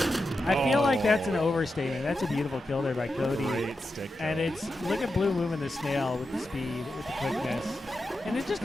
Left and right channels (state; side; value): normal; both; correlation 0.89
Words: I feel like that's an Oh. overstatement. That's a beautiful kill there by Cody. Great stick. And kill. it's, look at Blue moving the snail with the speed, with the quickness. And it just